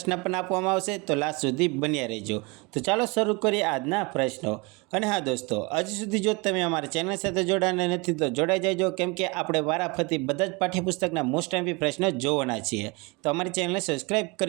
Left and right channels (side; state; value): left; quieter; 27.6 dB